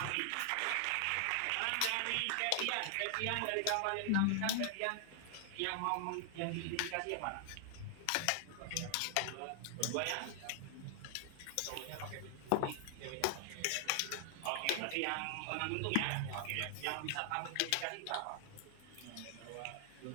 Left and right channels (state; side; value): different; both; correlation 0.00